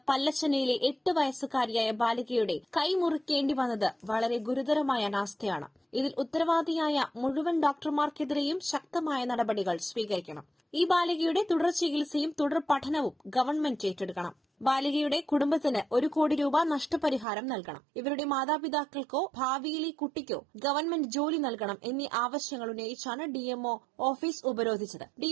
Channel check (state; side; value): drops out; left; at 17.2 s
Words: പല്ലശ്ശനയിലെ 8 വയസ്സുകാരിയായ ബാലികയുടെ കൈ മുറിക്കേണ്ടി വന്നത് വളരെ ഗുരുതരമായ അനാസ്ഥയാണ്. ഇതിൽ ഉത്തരവാദിയായ മുഴുവൻ ഡോക്ടർമാർക്കെതിരെയും ശക്തമായ നടപടികൾ സ്വീകരിക്കണം. ഈ ബാലികയുടെ തുടർ ചികിത്സയും തുടർ പഠനവും ഗവൺമെന്റ് ഏറ്റെടുക്കണം. ബാലികയുടെ കുടുംബത്തിന് 1 കോടി രൂപ നഷ്ടപരിഹാരം നൽകണം. ഇവരുടെ മാതാപിതാക്കൾക്കോ ഭാവിയിലെ കുട്ടിക്കോ ഗവൺമെന്റ് ജോലി നൽകണം എന്നീ ആവശ്യങ്ങൾ ഉന്നയിച്ചാണ് ഡിഎംഒ ഓഫീസ് ഉപരോധിച്ചത്.